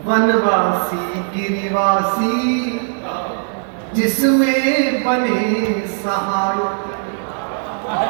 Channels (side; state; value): left; silent; digital silence